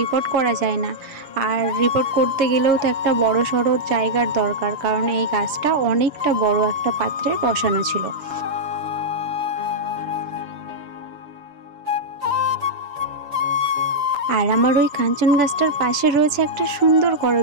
রিপোর্ট করা যায় না। আর রিপোর্ট করতে গেলেও তো একটা বড় সড়ো জায়গার দরকার, কারণ এই গাছটা অনেকটা বড় একটা পাত্রে বসানো ছিল। আর আমার ওই কাঞ্চন গাছটার পাশে রয়েছে একটা সুন্দর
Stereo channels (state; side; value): late; left; 6.9 ms